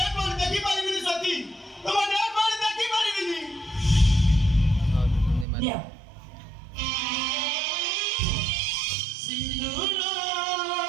ବଡି ଦେଖି ପାରିବିନି ସତୀ, ତମ ଡେଟ୍ ବଡି ଦେଖି ପାରିବିନି। ଦିଅ।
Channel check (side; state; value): left; drops out; at 5.5 s